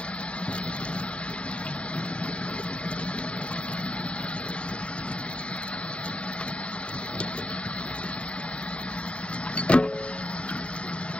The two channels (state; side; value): late; right; 0.060 ms